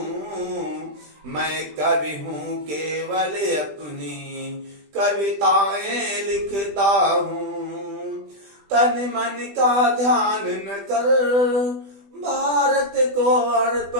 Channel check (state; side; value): late; left; 20 ms